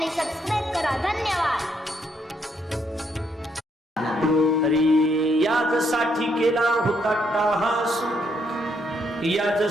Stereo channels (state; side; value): normal; both; correlation 0.74